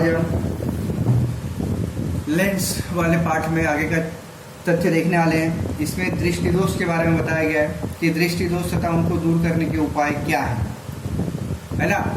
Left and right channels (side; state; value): both; identical; correlation 1.00